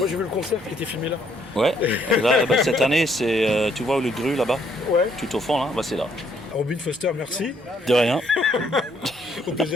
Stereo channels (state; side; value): normal; both; correlation 0.68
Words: j'ai vu le concert qui était filmé là. Ouais, là, cette année, c'est, tu vois le Gru là-bas? Ouais. Tout au fond là, c'est là. Robin Foster, merci. De rien. Au